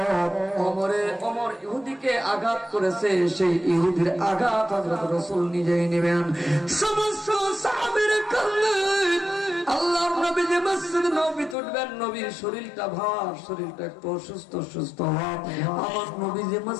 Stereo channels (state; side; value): drops out; right; at 11.6 s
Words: ওমর ইহুদিকে আঘাত করেছে, সেই ইহুদির আঘাত হযরত রাসূল নিজেই নেবেন। সমস্ত সাহাবীরা কাঁদলেন, আল্লাহর নবী যে মসজিদ নববীতে উঠবেন, নবীর শরীরটা ভার, শরীরটা একটু অসুস্থ ভাব, আমার নবী যে